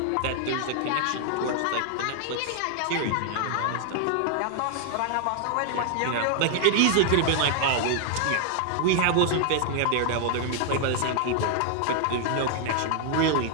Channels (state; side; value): different; both; correlation 0.00